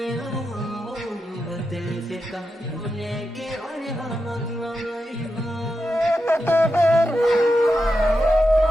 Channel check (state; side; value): normal; both; correlation 0.88